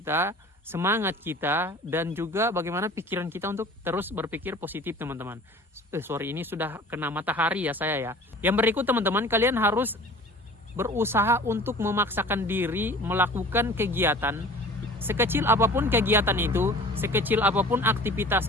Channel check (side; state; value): both; normal; correlation 0.44